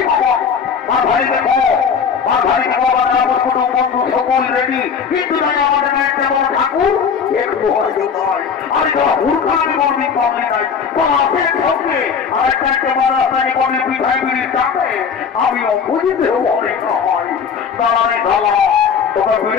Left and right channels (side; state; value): right; quieter; 6.5 dB